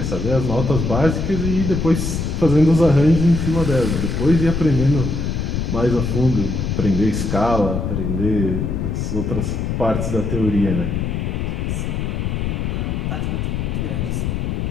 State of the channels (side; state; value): left; noise; rumble, 1 dB below the sound